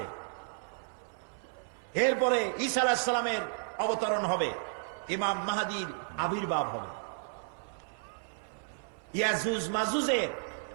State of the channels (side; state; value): left; silent; 56 dB below the other